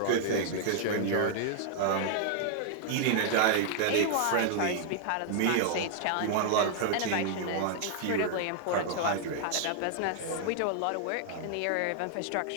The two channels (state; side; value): different; both; correlation -0.01